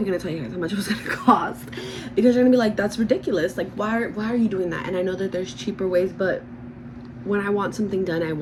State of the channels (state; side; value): identical; both; correlation 1.00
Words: gonna tell you guys how much it was gonna cost, because you're gonna be like, that's ridiculous. Like, why are you doing that? And I know that there's cheaper ways, but when I want something done, I